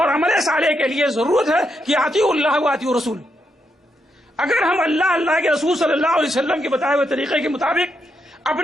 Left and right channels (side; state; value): both; normal; correlation 0.81